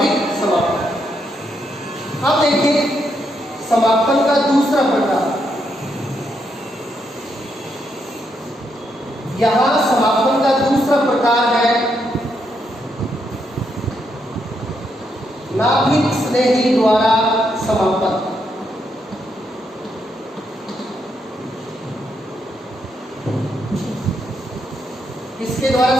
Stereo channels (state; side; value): normal; both; correlation 0.79